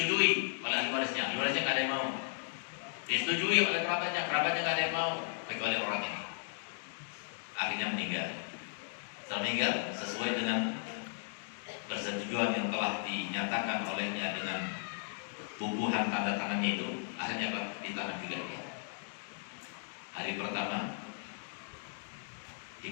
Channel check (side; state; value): right; silent; digital silence